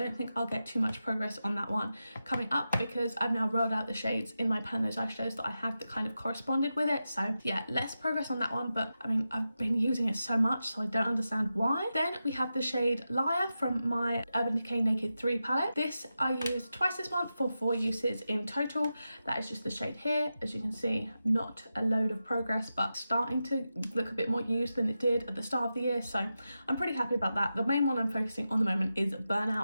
think I'll get too much progress on that one coming up because I've now rolled out the shades in my pan those eyeshadows that I had that kind of corresponded with it. So yeah, less progress on that one, but I mean, I've been using it so much, so I don't understand why. Then we have the shade Liar from my Urban Decay Naked 3 palette. This I used twice this month for 4 uses in total. That is just the shade here. As you can see, not a load of progress, but starting to look a bit more used than it did at the start of the year, so I'm pretty happy about that. The main one I'm focusing on the moment is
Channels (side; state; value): both; inverted; correlation -0.91